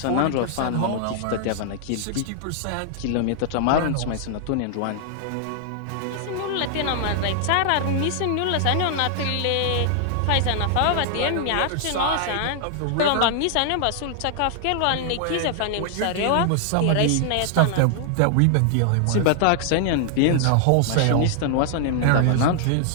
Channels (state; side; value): different; both; correlation 0.00